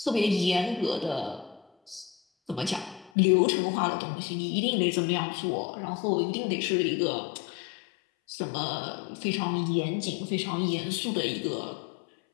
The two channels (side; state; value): right; drops out; at 3.1 s